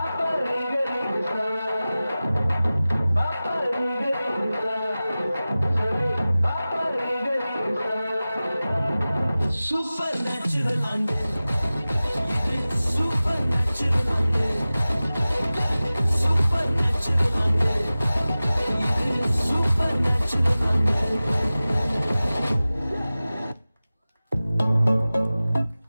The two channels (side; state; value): both; inverted; correlation -0.97